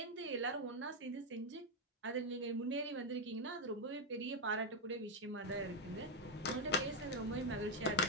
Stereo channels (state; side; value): normal; both; correlation 0.04